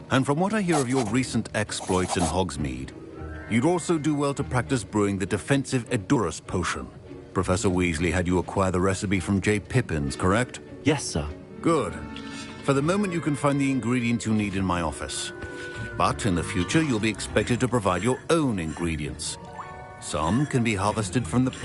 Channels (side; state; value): both; identical; correlation 1.00